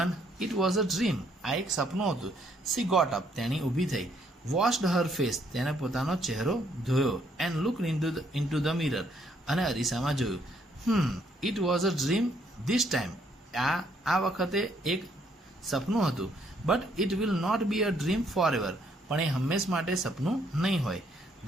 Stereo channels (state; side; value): normal; both; correlation 0.69